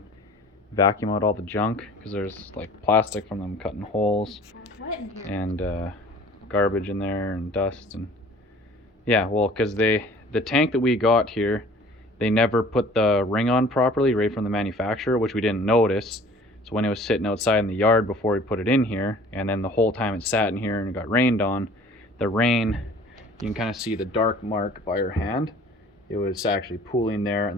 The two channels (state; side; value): normal; both; correlation 0.49